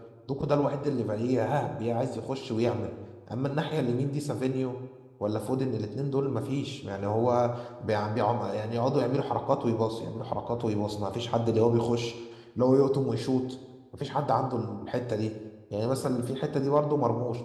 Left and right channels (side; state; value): both; identical; correlation 1.00